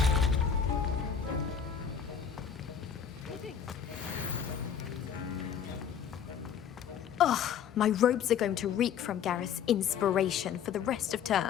Ugh, my robes are going to reek from Gareth's inspiration for the rest of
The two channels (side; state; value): right; quieter; 7.9 dB